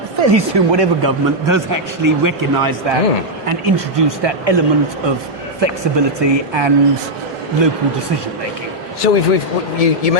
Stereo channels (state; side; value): normal; both; correlation -0.03